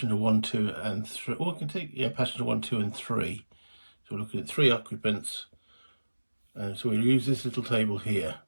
1, 2 and 3. Or I can take, yeah, passenger 1, 2 and 3. So we're looking at 3 occupants. And so we'll use this little table here.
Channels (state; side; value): inverted; both; correlation -1.00